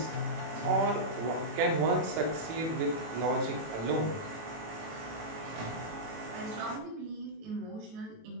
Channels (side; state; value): left; late; 18 ms